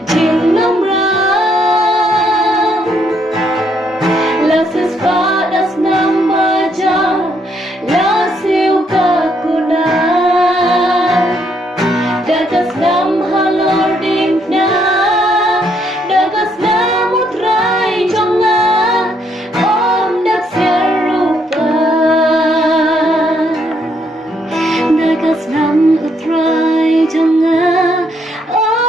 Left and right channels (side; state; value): both; normal; correlation 0.72